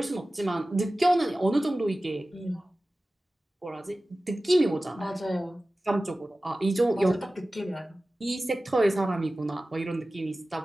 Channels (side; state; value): both; normal; correlation 0.96